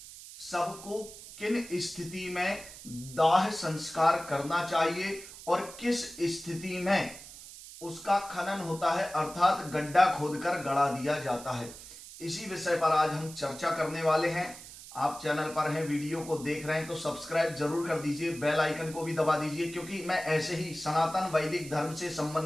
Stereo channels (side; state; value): right; noise; hiss, 15 dB below the sound